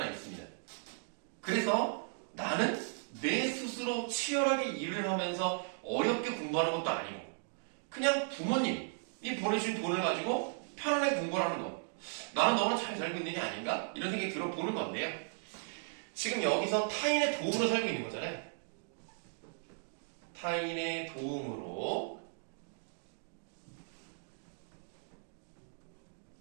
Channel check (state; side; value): silent; left; digital silence